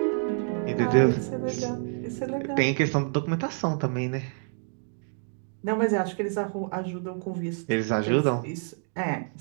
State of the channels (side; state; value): left; silent; 60 dB below the other